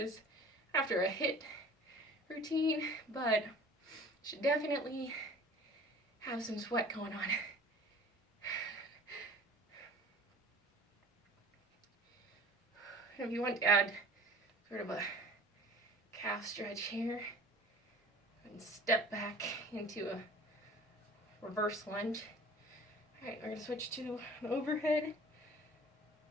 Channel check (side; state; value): both; normal; correlation 0.44